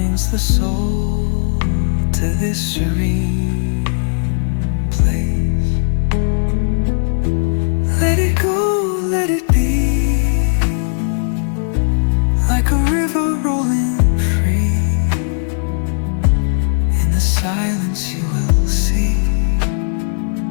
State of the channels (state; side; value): silent; right; digital silence